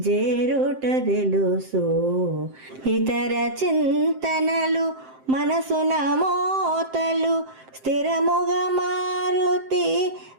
జేరుట తెలుసు ఇతర చింతనలు మనసున మోతలు స్థిరముగా మారుతి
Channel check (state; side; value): late; left; 7.6 ms